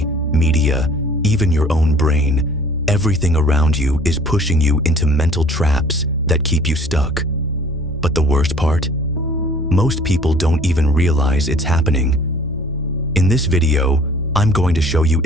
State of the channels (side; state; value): both; normal; correlation 0.51